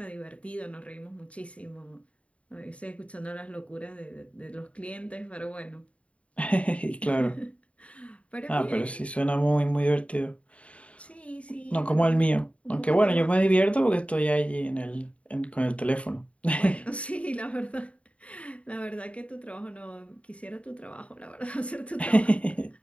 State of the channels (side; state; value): right; late; 0.063 ms